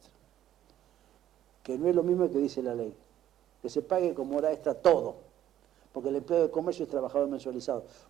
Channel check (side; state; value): left; quieter; 11.9 dB